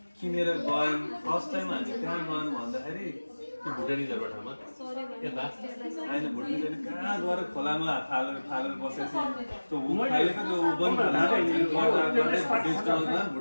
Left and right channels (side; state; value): both; inverted; correlation -1.00